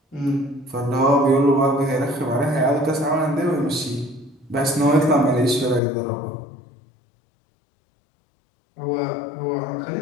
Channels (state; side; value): drops out; right; at 5.8 s